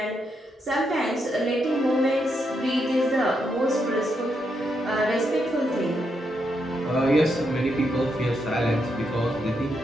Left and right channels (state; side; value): normal; both; correlation 0.81